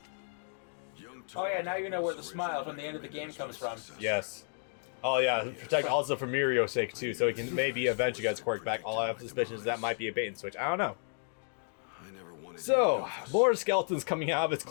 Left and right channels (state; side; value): silent; right; 55 dB below the other